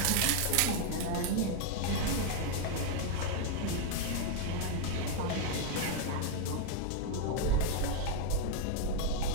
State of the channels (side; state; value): both; different; correlation 0.00